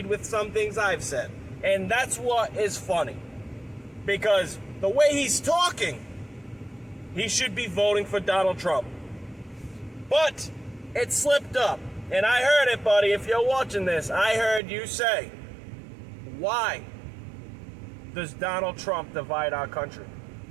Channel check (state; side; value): drops out; left; at 14.6 s